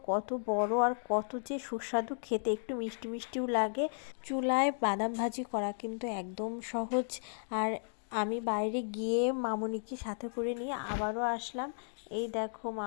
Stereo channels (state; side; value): silent; right; digital silence